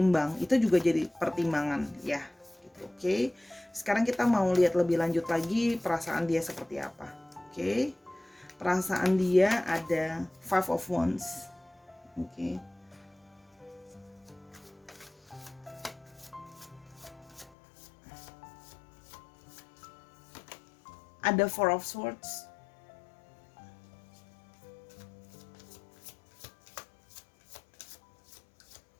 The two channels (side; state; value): right; drops out; at 17.5 s